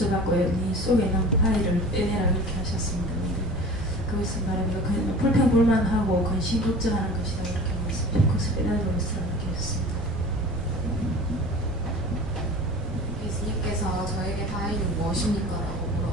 네 속에 있는 파일을 빼내라 이렇게 하셨습니다. 근데 그것을 말하면 불평불만하고 근심 걱정하는 것이다 이렇게 말씀하셨고 그것을 빼내도록 이렇게 하셨습니다. 예수님께서 저에게 바위는 무엇입니까? 라고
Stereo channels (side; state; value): both; normal; correlation 0.40